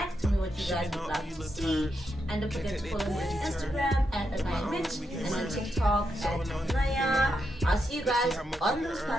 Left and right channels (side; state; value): both; normal; correlation 0.83